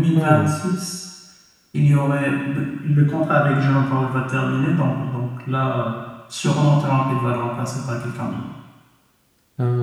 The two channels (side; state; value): both; identical; correlation 1.00